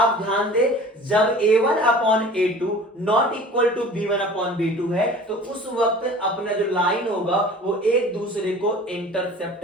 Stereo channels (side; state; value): both; normal; correlation 0.43